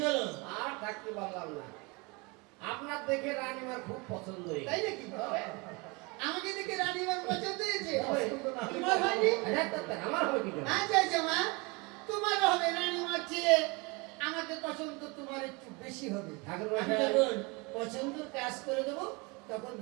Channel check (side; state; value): left; quieter; 27.8 dB